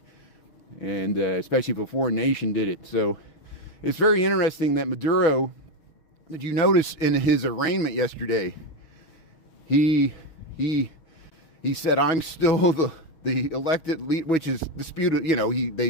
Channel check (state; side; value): late; right; 6.2 ms